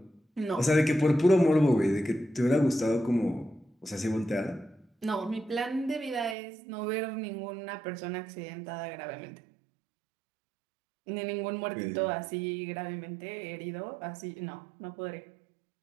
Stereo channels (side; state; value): left; drops out; at 6.4 s